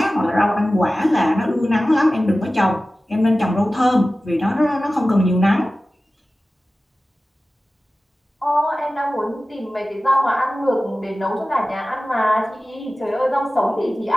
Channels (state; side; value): normal; both; correlation 0.96